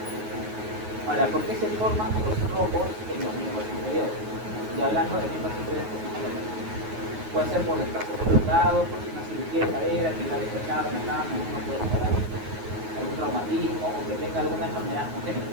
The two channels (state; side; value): late; left; 9.5 ms